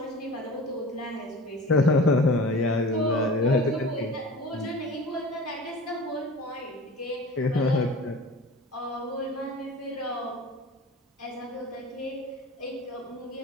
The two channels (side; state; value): both; normal; correlation 0.38